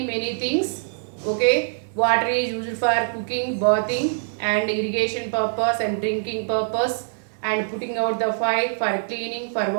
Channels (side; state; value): left; silent; digital silence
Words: things. Okay, water is used for cooking, bathing and irrigation purpose and drinking purpose and putting out the fire, for cleaning, for